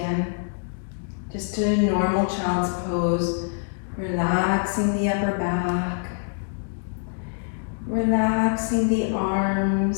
Just a normal child's pose, relaxing the upper back, relaxing the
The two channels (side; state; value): right; silent; digital silence